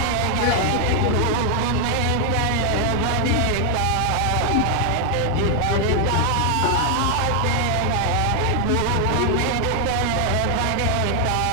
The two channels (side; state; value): both; different; correlation 0.00